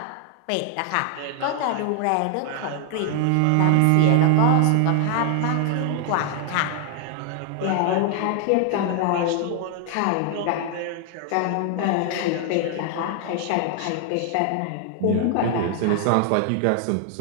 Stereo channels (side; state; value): both; different; correlation 0.00